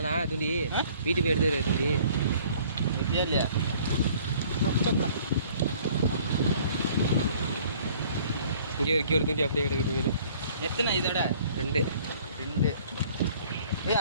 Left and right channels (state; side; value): inverted; both; correlation -0.55